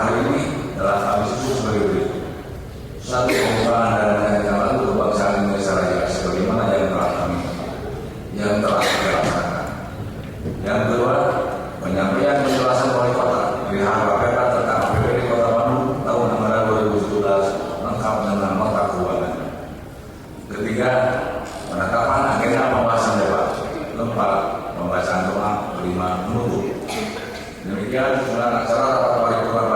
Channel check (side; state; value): both; identical; correlation 1.00